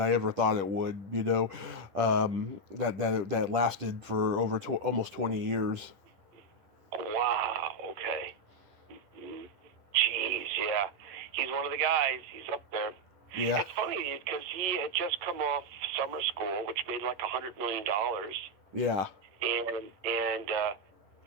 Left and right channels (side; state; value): left; late; 10 ms